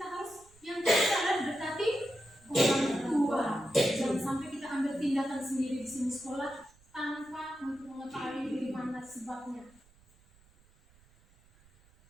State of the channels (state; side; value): noise; right; rumble, 29 dB below the sound